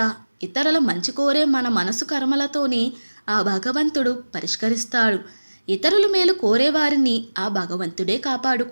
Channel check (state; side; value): inverted; both; correlation -1.00